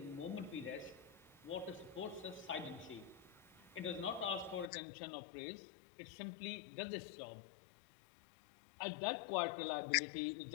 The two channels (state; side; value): drops out; right; at 4.7 s